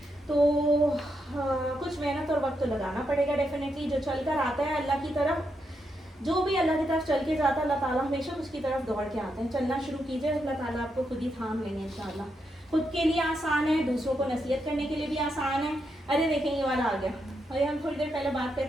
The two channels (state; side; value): normal; both; correlation 0.82